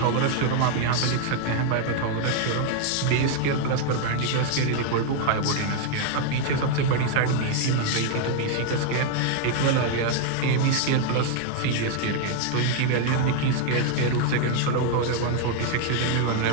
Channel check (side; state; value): both; different; correlation 0.00